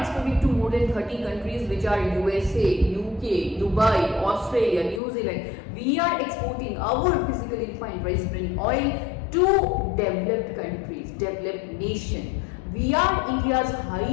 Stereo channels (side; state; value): right; drops out; at 5.0 s